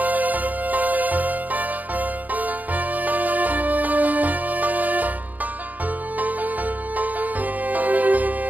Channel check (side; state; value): left; late; 0.080 ms